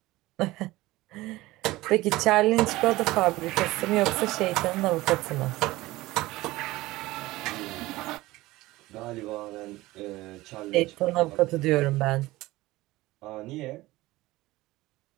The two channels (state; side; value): quieter; left; 18.7 dB